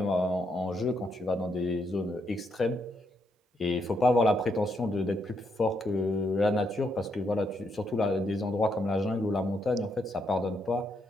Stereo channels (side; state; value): both; normal; correlation 0.78